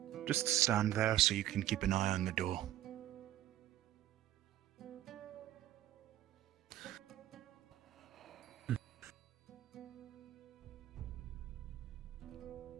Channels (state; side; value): quieter; left; 13.1 dB